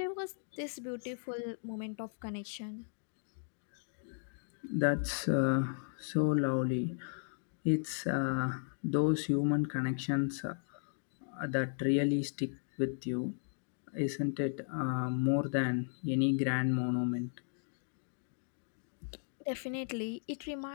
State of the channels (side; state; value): right; silent; digital silence